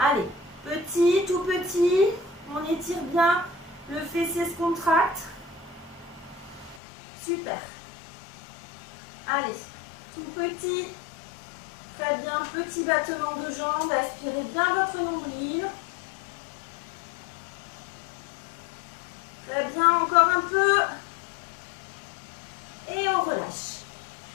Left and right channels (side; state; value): right; drops out; at 6.8 s